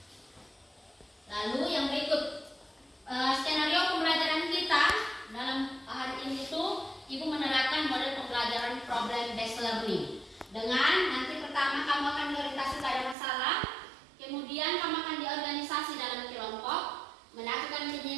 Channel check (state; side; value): drops out; left; at 13.2 s